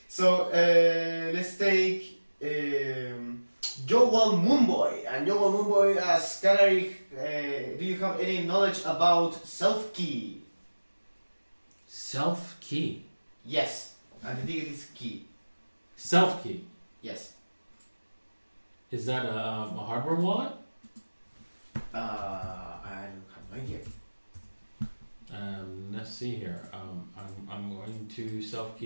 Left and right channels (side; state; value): both; inverted; correlation -1.00